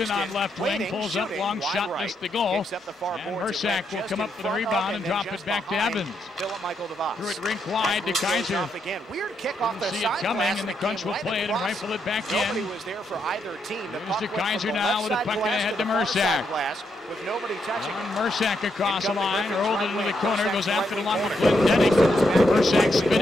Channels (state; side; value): normal; both; correlation 0.79